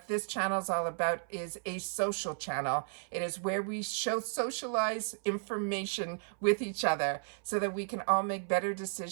this channel is all about is a social channel. It is where we socialize information with each other so that we can all make better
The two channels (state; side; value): silent; left; 55 dB below the other